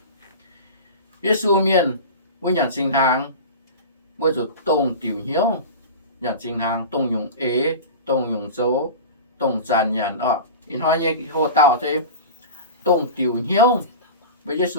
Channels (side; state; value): both; inverted; correlation -0.30